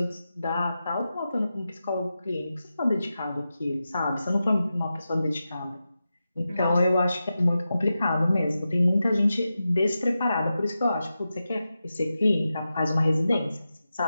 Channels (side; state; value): both; inverted; correlation -0.91